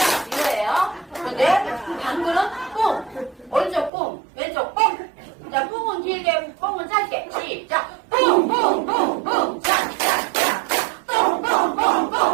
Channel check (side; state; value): left; drops out; at 3.9 s